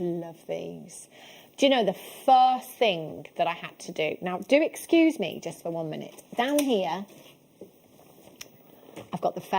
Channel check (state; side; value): identical; both; correlation 1.00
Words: these. Do you know the first thing that I had to do? Now, do excuse me just for 1 minute. Down here, I've got the